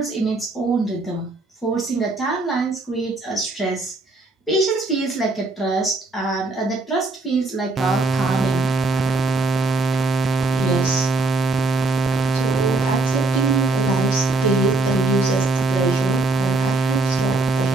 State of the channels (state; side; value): quieter; left; 3.2 dB